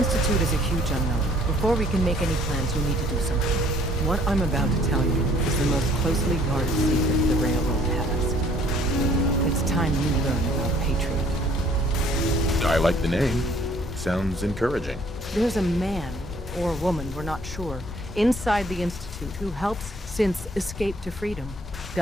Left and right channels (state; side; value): normal; both; correlation 0.59